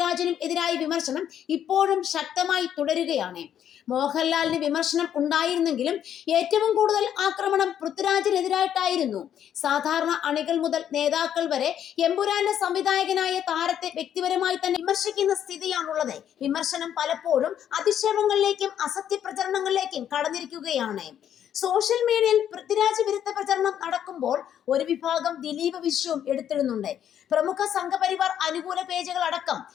എതിരായ വിമർശനം ഇപ്പോഴും ശക്തമായി തുടരുകയാണ്. മോഹൻലാലിന് വിമർശനം ഉണ്ടായിരുന്നെങ്കിലും ഏറ്റവും കൂടുതൽ ആക്രമണം പൃഥ്വിരാജിനെതിരായിട്ടായിരുന്നു. സാധാരണ അണികൾ മുതൽ നേതാക്കൾ വരെ എമ്പുരാന്റെ സംവിധായകനായ താരത്തെ വ്യക്തിപരമായി തന്നെ വിമർശിക്കുന്ന സ്ഥിതിയാണുള്ളത്. വിമർശനം പലപ്പോഴും അധിക്ഷേപങ്ങളിലേക്കും അസത്യ പ്രചരണങ്ങളിലേക്കും കടന്നിരിക്കുകയാണ്. സോഷ്യൽ മീഡിയയിൽ പൃഥ്വിരാജ് വിരുദ്ധ പ്രചരണം നടക്കുമ്പോൾ ഒരു വിഭാഗം ദിലീപ് വിഷയവും എടുത്തിടുന്നുണ്ട്. പ്രമുഖ സംഘപരിവാർ അനുകൂല പേജുകൾ അടക്കം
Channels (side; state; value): right; quieter; 9.8 dB